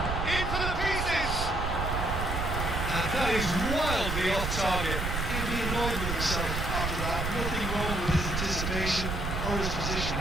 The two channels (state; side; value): noise; right; rumble, 2 dB below the sound